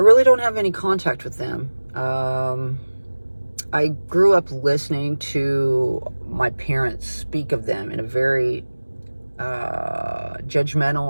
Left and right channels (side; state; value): both; inverted; correlation -1.00